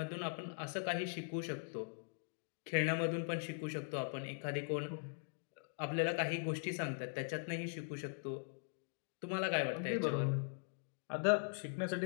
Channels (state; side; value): silent; right; digital silence